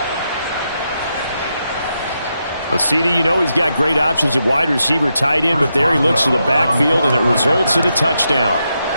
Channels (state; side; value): inverted; both; correlation -0.84